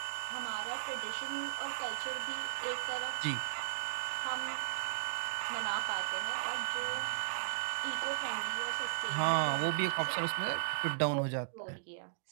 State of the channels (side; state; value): left; silent; digital silence